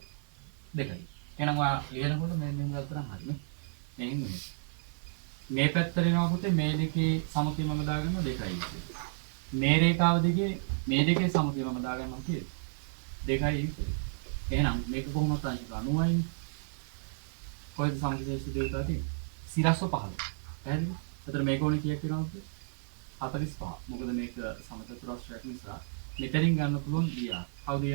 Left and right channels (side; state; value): left; silent; 56 dB below the other